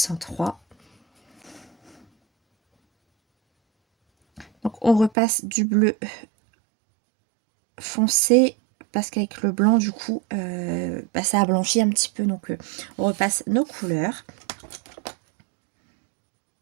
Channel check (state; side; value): drops out; left; at 5.1 s